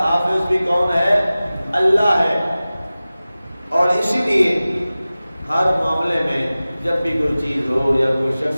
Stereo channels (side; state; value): both; inverted; correlation -0.97